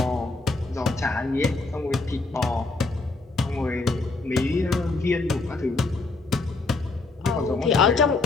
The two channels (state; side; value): quieter; right; 3.5 dB